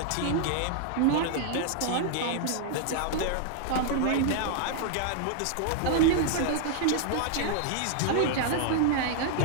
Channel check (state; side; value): different; both; correlation 0.00